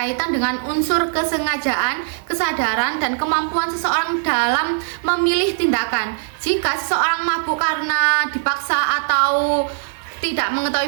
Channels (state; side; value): silent; left; 55 dB below the other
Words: dengan unsur kesengajaan, kesadaran, dan kemampuan seseorang dalam memilih tindakan. Jika seseorang mabuk karena dipaksa atau tidak